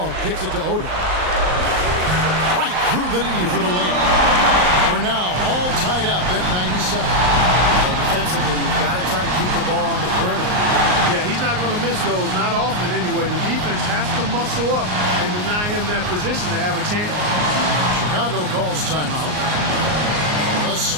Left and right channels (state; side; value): late; left; 38 ms